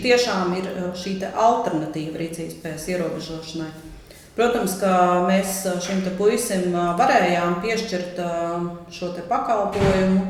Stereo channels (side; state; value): both; identical; correlation 1.00